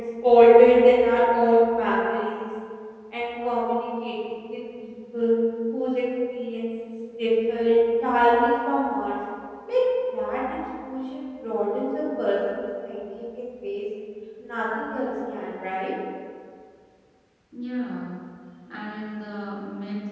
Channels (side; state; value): both; identical; correlation 1.00